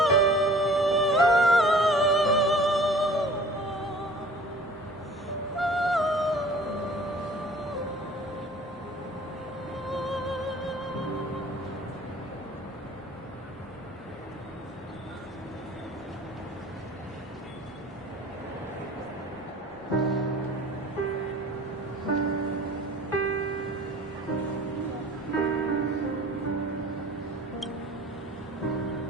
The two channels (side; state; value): both; normal; correlation 0.47